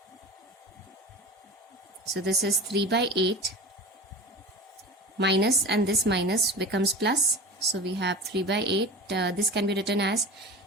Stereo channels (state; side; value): normal; both; correlation 0.31